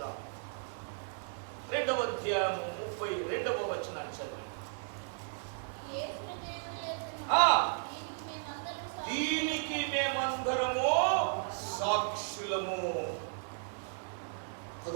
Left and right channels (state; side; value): silent; left; 54 dB below the other